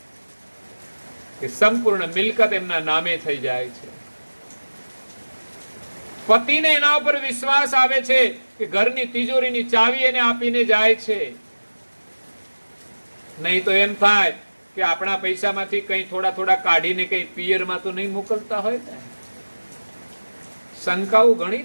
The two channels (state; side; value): inverted; both; correlation -1.00